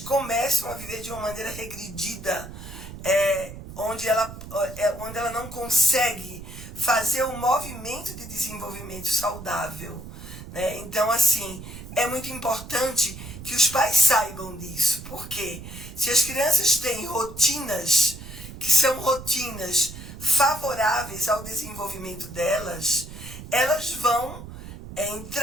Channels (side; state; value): right; noise; rumble, 13 dB below the sound